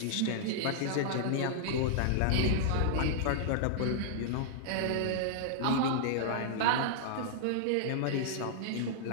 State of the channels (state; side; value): different; both; correlation -0.01